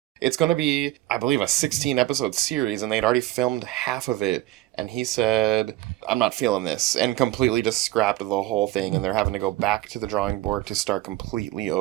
It's going to be, I believe, a 16 episode series, and they'd already filmed half of it. And he said, I'm not feeling this, and completely just scrapped the whole thing. And they're having to go back to the drawing board to start completely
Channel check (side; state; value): left; quieter; 16.3 dB